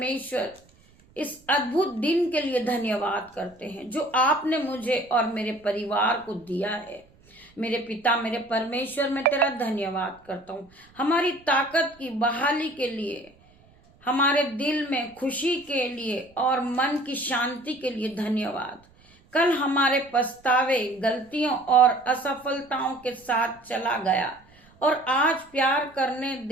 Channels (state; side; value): noise; right; rumble, 29 dB below the sound